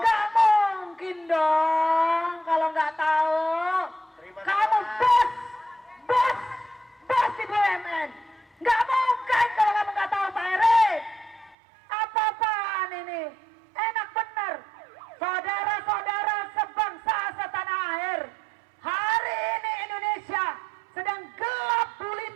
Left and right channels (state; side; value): drops out; left; at 11.6 s